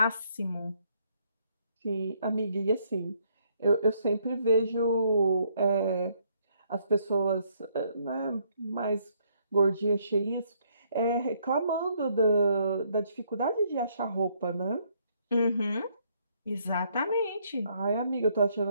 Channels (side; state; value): both; inverted; correlation -0.69